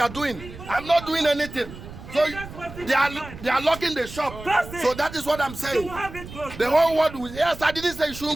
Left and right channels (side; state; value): right; noise; rumble, 14 dB below the sound